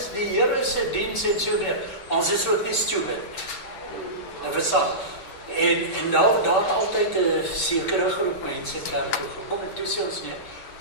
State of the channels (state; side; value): late; right; 7.8 ms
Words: die Here se diens en so meer." Ons is ook nie stupid. Nou verstaan. En daar het altyd 'n sekere groep mense kerk toe gekom en toe sê ons nee,